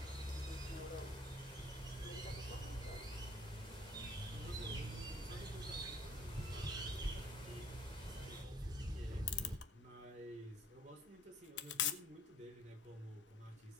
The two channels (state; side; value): normal; both; correlation 0.56